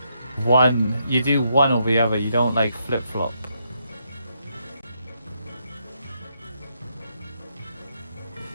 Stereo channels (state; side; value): inverted; both; correlation -0.77